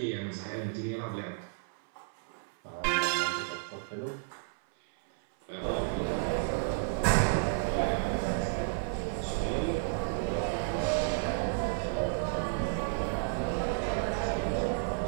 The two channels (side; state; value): left; silent; 56 dB below the other